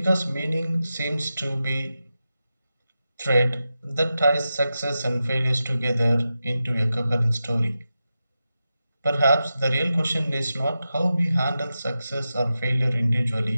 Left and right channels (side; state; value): both; inverted; correlation -0.91